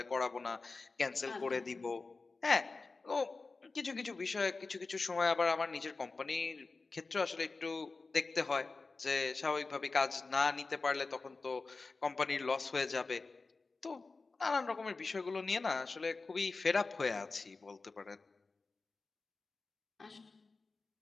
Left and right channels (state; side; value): quieter; right; 3.9 dB